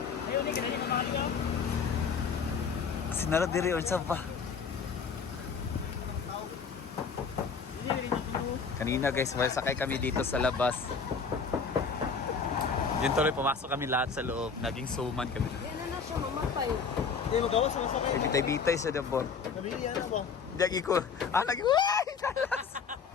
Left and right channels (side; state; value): right; quieter; 5.6 dB